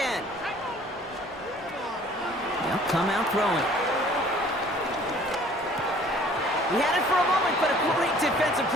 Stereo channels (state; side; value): normal; both; correlation 0.53